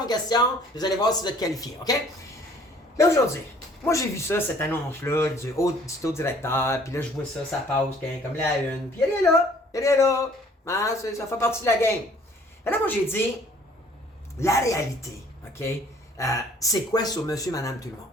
aux questions, vous allez voir si vous êtes qualifié. OK? Là, aujourd'hui, moi, j'ai vu ça, cette annonce-là, du taux directeur, puis là, je vois ça, ça passe comme la une, puis elle est là, ah, ça fait partie de la game. Et là, moi, j'ai dit, la réalité, OK, c'est quoi sur monsieur, madame, tout le monde?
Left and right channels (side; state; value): both; normal; correlation 0.56